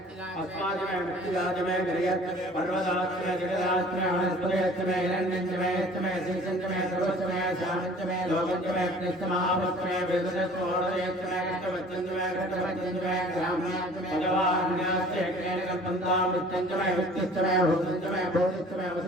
अस्माजमे मुक्तिदाजमे गिरियत् पर्वताच्चमे जगदाच्चमे वनस्पतिच्चमे हिरण्यञ्चमे यच्चमे शीर्षञ्चमे सर्वच्चमे श्यामञ्चमे लोकञ्चमे कृष्णमहापुत्रमे वेदनस्तोडयच्चमे कृष्णवच्चञ्चमे कृष्णवच्चञ्चमे ग्राम्याच्चमे भगवान्याश्चेन कल्पन्तामृत्यञ्चमे वित्तिश्चमे भूतञ्चमे भूतिश्चमे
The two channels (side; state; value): both; normal; correlation 0.49